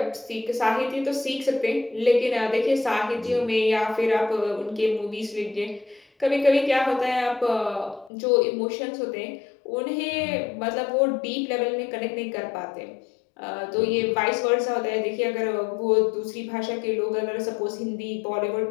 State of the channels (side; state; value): right; drops out; at 8.1 s